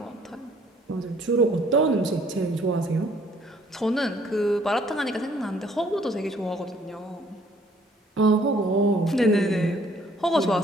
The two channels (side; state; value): both; normal; correlation 0.61